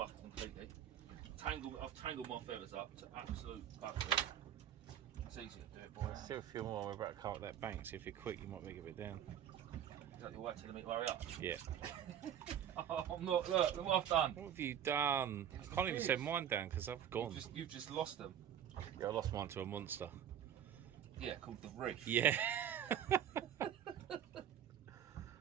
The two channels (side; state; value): left; quieter; 9.7 dB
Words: completely. I've tangled my feathers up to absolute buggery. It's easy to do it, boy. Still a few more. We're about to come up that bank, so if you're quick, you might make it a bit down. Is that your way to the meat? Hurry up. Yeah. Oh, I'm not. Look what I've done. What have you done? I can't even set mine down because I've gone. You've just lost them. Yeah, I lost mine to a monster. Yeah, called the reef. Yeah.